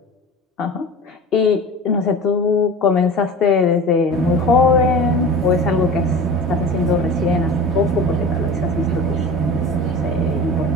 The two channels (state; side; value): normal; both; correlation 0.35